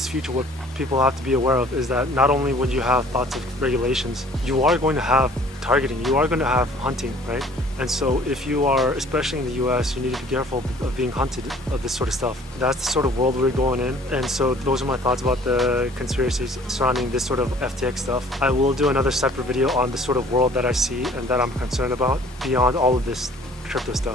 future, what people have to be aware of is that not only when you have thoughts of regulations, you are going to have targeting, you are going to have hunting, right? And so if you are, especially in the US, you need to be careful of being hunted of this sort of stuff. That's the sort of world we're going in. And so those are my thoughts about the conspiracies surrounding this sort of FTX stuff. I will do another separate video on the sort of world that I see and that I'm concerned about beyond all of this crypto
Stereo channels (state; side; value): normal; both; correlation 0.53